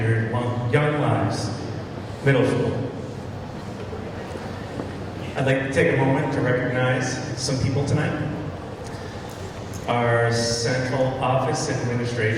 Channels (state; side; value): identical; both; correlation 1.00